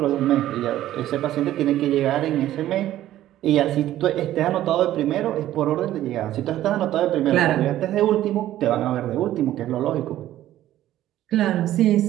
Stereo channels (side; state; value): left; quieter; 13.4 dB